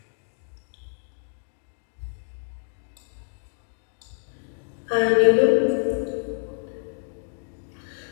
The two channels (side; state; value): right; silent; digital silence